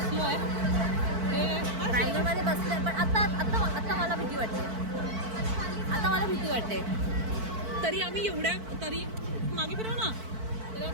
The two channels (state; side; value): late; left; 4.5 ms